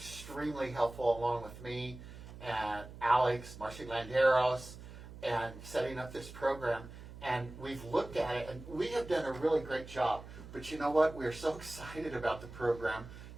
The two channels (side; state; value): right; noise; hum, 14 dB below the sound